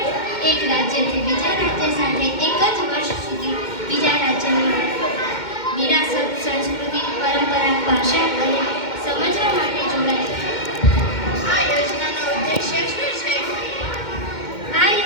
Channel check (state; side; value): late; right; 2.1 ms